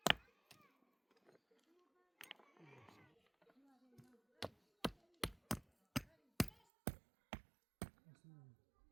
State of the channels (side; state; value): left; drops out; at 6.7 s